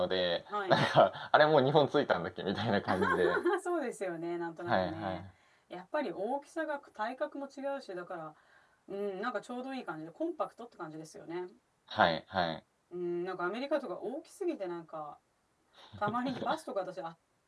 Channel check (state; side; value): identical; both; correlation 1.00